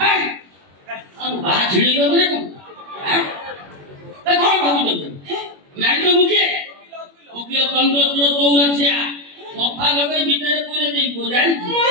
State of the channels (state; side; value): late; left; 21 ms